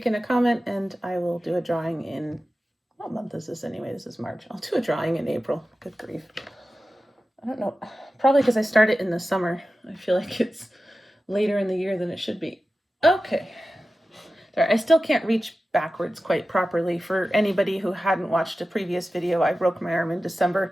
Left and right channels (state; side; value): normal; both; correlation 0.94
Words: in a comment, and I will do a drawing in, what month is this anyway? This is March. I'll do a drawing in April. Good grief. I don't know. Probably because I start it in the summer. I feel like it's later in the year than it should be. Okay. There, I still can't reach backwards quite properly. For anybody who hadn't watched a previous video, I broke my arm in December.